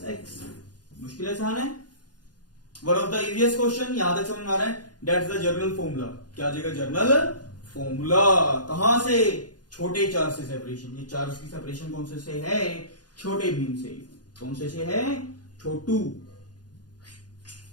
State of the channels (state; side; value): late; right; 0.69 ms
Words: x। मुश्किल आसान है, one of the easiest question, यहां तक समझ में आ रहा है, दैट्स द जर्नल फॉर्मूला। क्या आ जाएगा, जर्नल फॉर्मूला। कहां से, छोटे चार्ज से सेपरेशन। ये चार्ज की सेपरेशन कौन से है, छोटे बीम से। कौन से है, छोटू